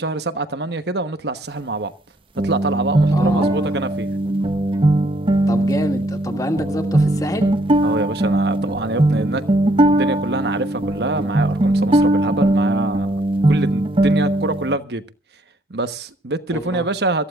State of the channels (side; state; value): both; normal; correlation 0.67